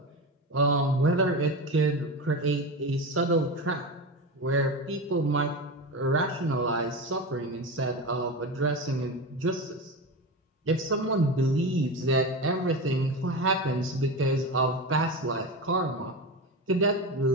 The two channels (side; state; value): both; normal; correlation 0.22